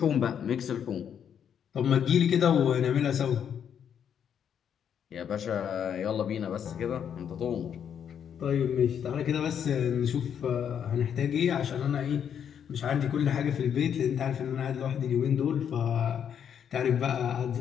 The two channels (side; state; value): right; quieter; 8.4 dB